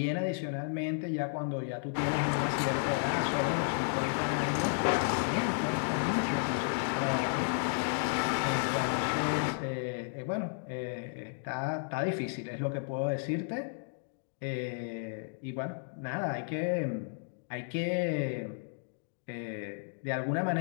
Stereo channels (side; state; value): right; silent; digital silence